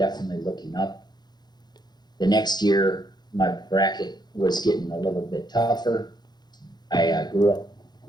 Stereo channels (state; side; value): late; right; 0.20 ms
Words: looking up. The next year, my bracket was getting a little bit tougher. I grew